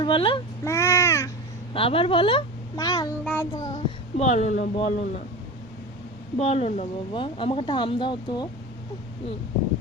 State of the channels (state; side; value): normal; both; correlation 0.29